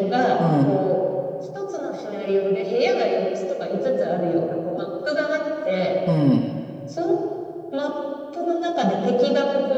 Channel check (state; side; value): identical; both; correlation 1.00